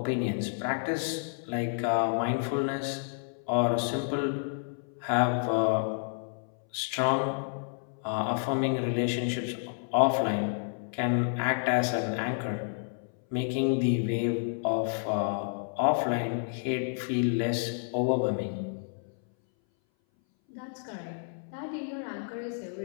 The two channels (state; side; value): silent; right; 58 dB below the other